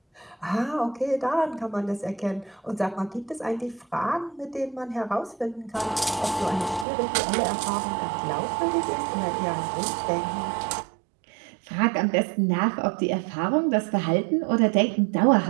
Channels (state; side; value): drops out; left; at 6.9 s